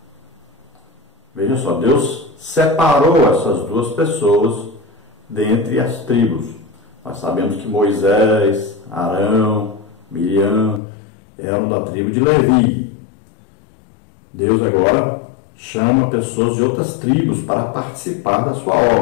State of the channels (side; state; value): right; drops out; at 10.8 s